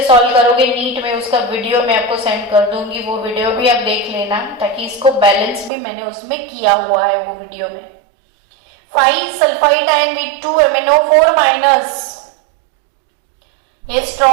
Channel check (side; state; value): left; drops out; at 5.7 s